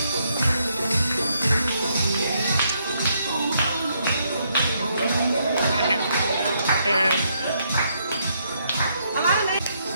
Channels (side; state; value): both; inverted; correlation -0.74